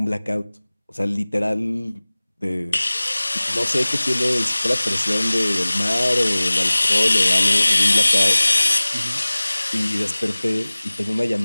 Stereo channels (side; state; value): both; inverted; correlation -0.99